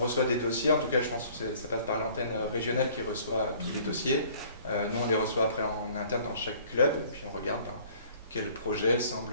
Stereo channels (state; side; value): inverted; both; correlation -0.54